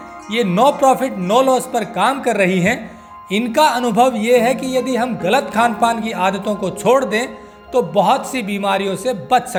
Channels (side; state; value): both; identical; correlation 1.00